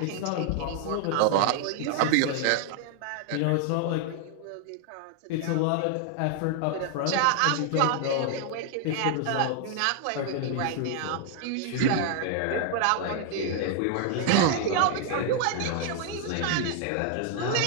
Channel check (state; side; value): different; both; correlation 0.00